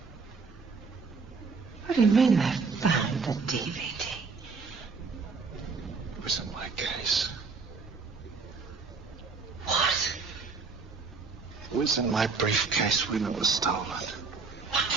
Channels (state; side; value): quieter; left; 4.7 dB